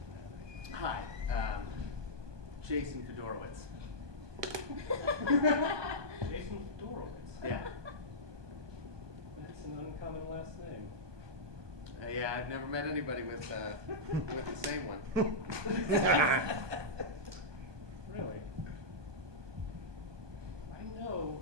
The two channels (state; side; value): late; left; 1.2 ms